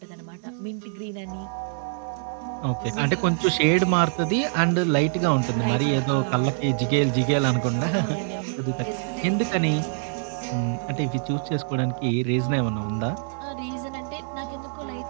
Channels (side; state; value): left; silent; 62 dB below the other